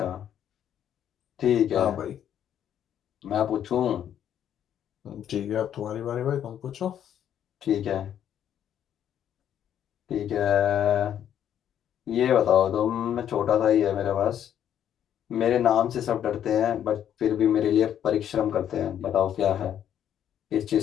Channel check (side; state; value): right; quieter; 9.9 dB